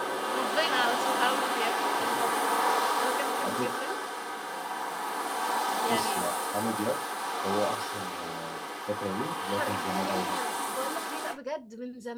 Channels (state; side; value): identical; both; correlation 1.00